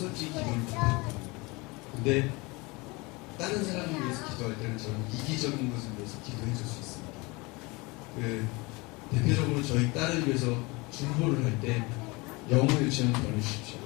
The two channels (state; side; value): quieter; right; 25.3 dB